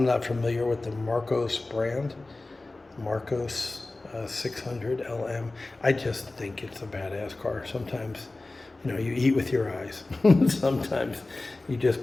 not familiar with the Marcos brand. Marcos 600 LM. I just think it's a badass car. Sometimes, you know, you eat with your eyes. Sometimes you just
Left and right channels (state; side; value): quieter; right; 3.1 dB